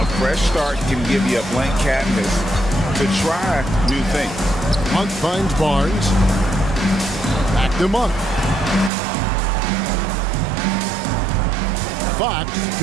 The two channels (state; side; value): drops out; left; at 8.9 s